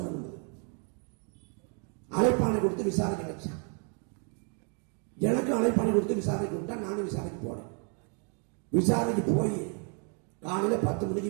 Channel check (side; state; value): left; quieter; 39.5 dB